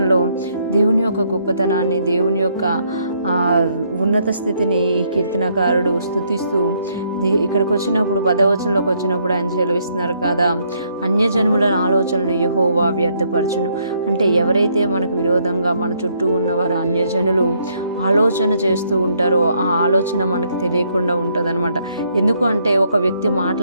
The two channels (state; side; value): inverted; both; correlation -0.71